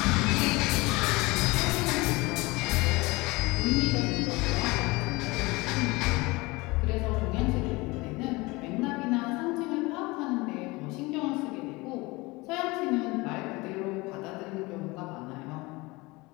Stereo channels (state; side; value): quieter; right; 23.3 dB